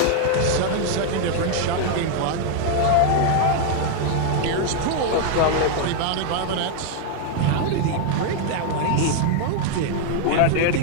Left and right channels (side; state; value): both; different; correlation 0.00